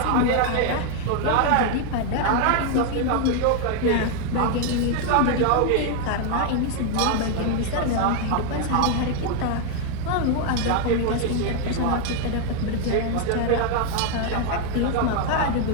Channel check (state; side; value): different; both; correlation 0.00